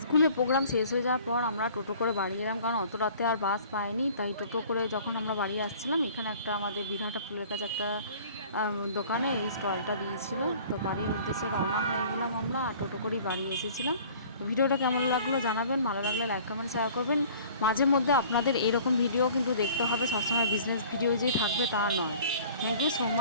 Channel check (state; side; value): inverted; both; correlation -0.49